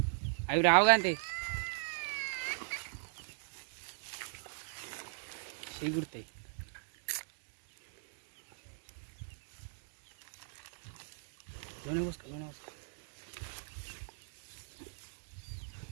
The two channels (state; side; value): silent; left; digital silence